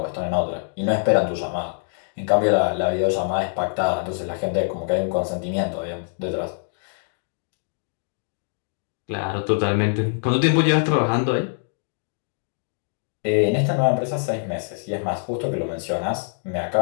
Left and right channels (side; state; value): right; silent; digital silence